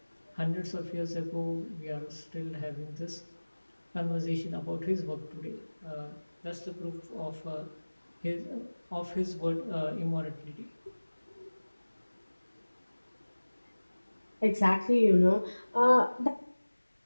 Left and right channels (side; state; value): both; inverted; correlation -1.00